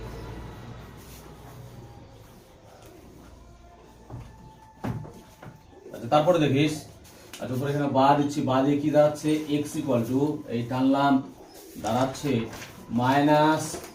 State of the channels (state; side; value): identical; both; correlation 1.00